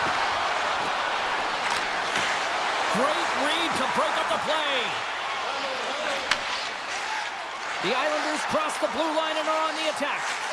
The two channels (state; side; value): identical; both; correlation 1.00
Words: Great read to break up the play. The Islanders cross the blue line and are on the attack.